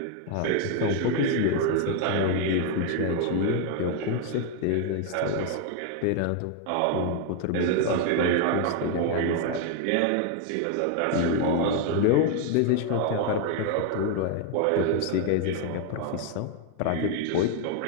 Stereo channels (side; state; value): both; different; correlation 0.01